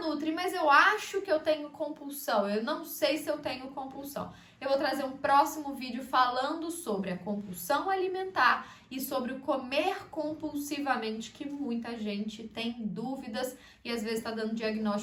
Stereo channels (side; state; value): both; identical; correlation 1.00